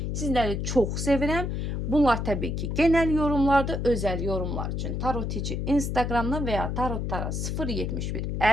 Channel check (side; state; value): left; noise; hum, 2 dB below the sound